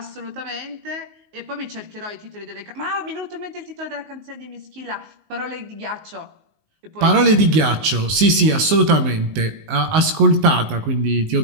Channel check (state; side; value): late; left; 19 ms